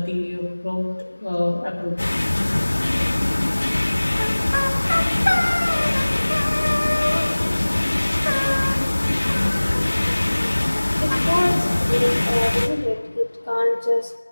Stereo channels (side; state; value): both; inverted; correlation -1.00